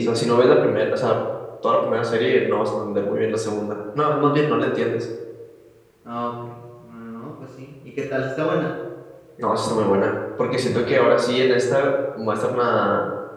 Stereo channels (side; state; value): both; identical; correlation 1.00